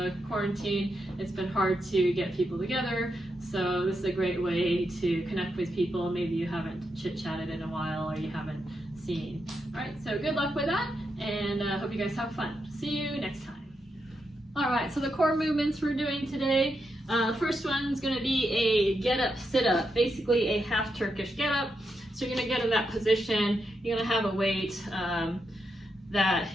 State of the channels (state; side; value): normal; both; correlation 0.84